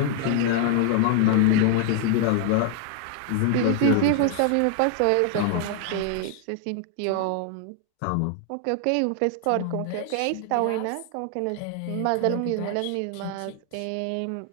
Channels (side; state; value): both; different; correlation 0.00